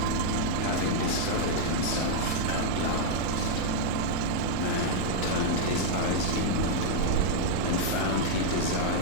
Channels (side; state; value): both; different; correlation -0.01